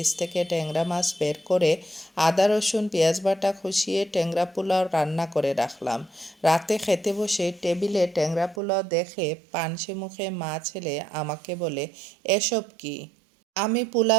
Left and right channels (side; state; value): left; drops out; at 8.6 s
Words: থেকে ট্যাংরা মাছ বের করে আদা রসুন পেঁয়াজ বাটা কষিয়ে ট্যাংরা পোলাও রান্না করে রাখলাম? রাতে খেতে বসে টেবিলে ট্যাংরা পোলাও দেখে পানসে মুখে মা ছেলে আমাকে বলে, এসব কি? আমি